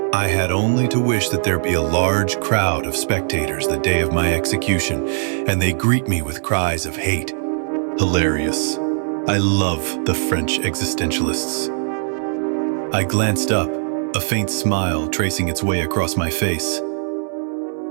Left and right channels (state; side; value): silent; left; digital silence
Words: I had only to wish that there be a large crowd of spectators the day of my execution, and they greet me with cries of hate. Hilarious. I love the French existentialists. I glanced up, a faint smile tracing its way across my face.